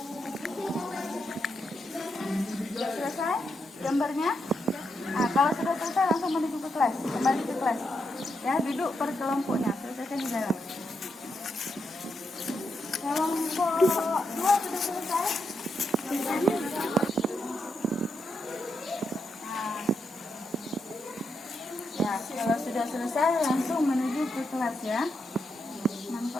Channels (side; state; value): both; normal; correlation 0.83